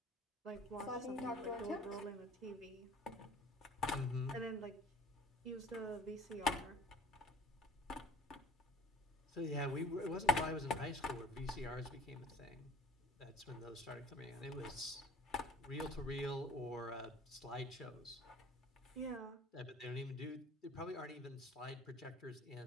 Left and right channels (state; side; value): normal; both; correlation 0.49